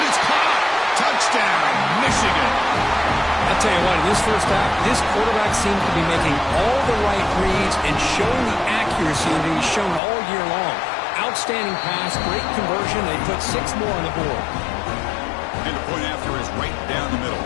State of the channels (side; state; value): right; drops out; at 10.0 s